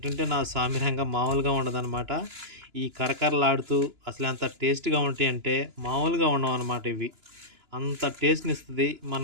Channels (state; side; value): late; left; 2.9 ms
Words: నా సామిరంగా మామూలుగా ఉండదనమాట. ఈ కరకరలాడుతూ అసలు ఎంత టేస్ట్‌గా ఉంటాయంటే మామూలుగా ఉండవన్నమాట ఇవి. అంత టేస్ట్‌నిస్తది.